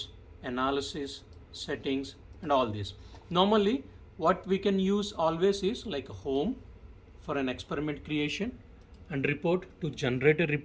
analysis, settings, and all this. Normally what we can use always is like a home for an experiment creation, and report to generate a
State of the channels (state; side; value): identical; both; correlation 1.00